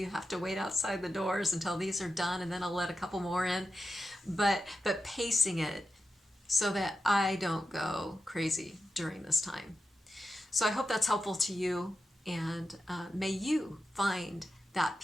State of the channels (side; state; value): both; normal; correlation 0.90